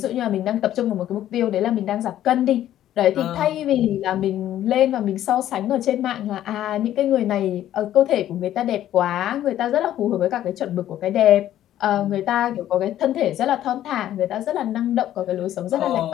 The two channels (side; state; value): right; quieter; 12.3 dB